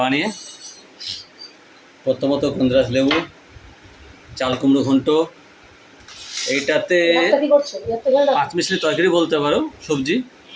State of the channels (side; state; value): both; identical; correlation 1.00